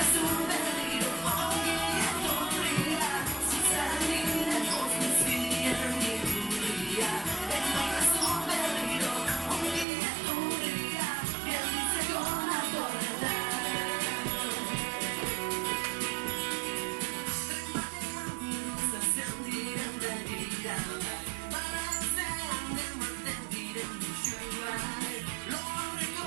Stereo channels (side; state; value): left; drops out; at 9.9 s